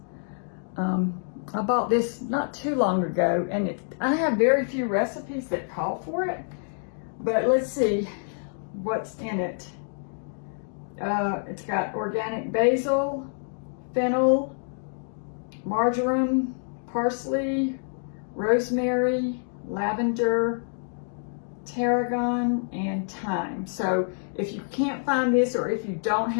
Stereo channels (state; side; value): silent; right; digital silence